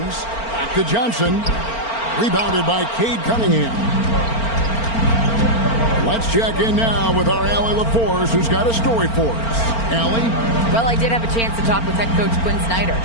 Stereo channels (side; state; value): right; late; 4.4 ms